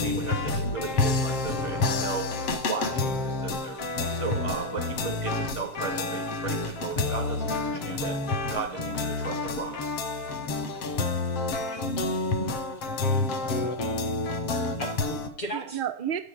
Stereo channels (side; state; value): right; late; 7.5 ms